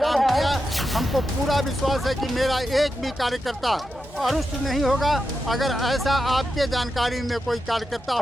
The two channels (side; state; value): both; normal; correlation 0.88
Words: किया। हमको पूरा विश्वास है कि मेरा एक भी कार्यकर्ता अरुष्ट नहीं होगा। अगर ऐसा आपके जानकारी में कोई कार्यकर्ता